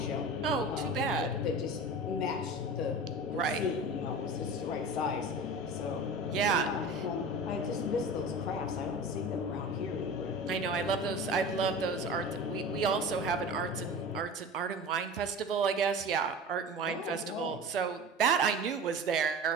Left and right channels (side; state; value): both; normal; correlation 0.34